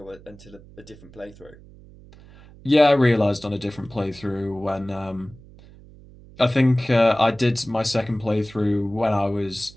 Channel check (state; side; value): noise; right; hum, 22 dB below the sound